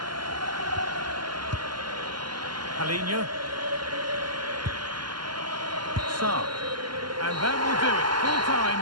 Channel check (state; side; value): late; left; 0.71 ms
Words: Palinha. Sarr. And that will do it. Full time,